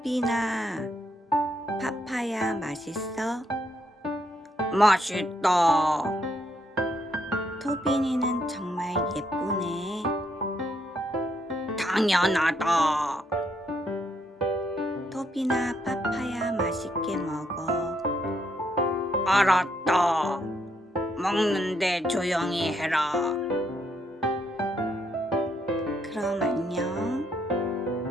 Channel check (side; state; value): both; normal; correlation 0.75